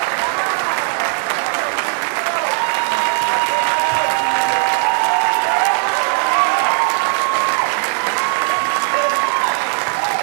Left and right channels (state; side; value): silent; left; 68 dB below the other